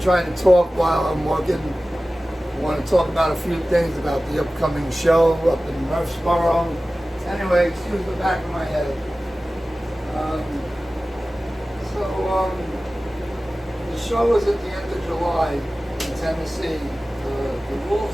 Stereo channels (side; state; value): both; normal; correlation 0.96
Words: try to talk while I'm working. I want to talk about a few things about the upcoming show up in Murfreesboro. Anyway, excuse the back of my head. The show is at the end of July in Tennessee. The rules